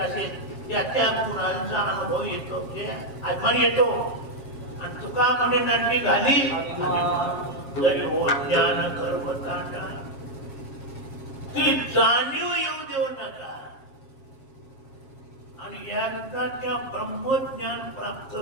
असेल त्या त्या गुणांचा अनुभव येतो म्हणजे अभिमान येतो. आणि तुका म्हणे नाटली घाली जरी हो ज्ञान गर्वतांडा. ती जाणीव येऊ देऊ नका. आणि एकदा त्या ब्रह्मज्ञान प्राप्त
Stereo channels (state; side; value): late; right; 7.5 ms